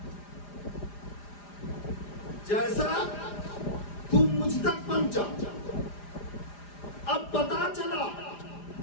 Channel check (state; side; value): late; right; 4.9 ms